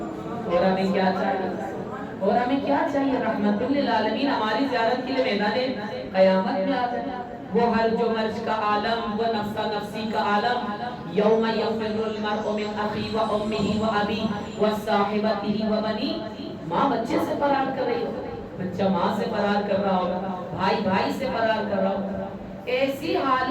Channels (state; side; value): identical; both; correlation 1.00